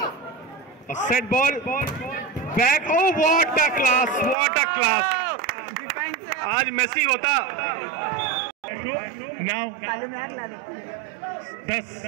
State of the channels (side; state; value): left; drops out; at 4.4 s